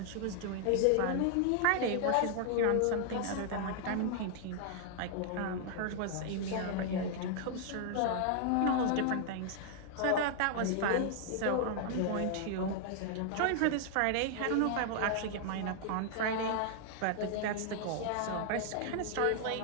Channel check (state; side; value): different; both; correlation 0.00